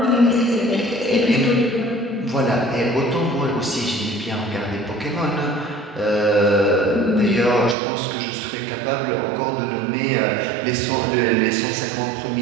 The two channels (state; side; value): drops out; left; at 7.8 s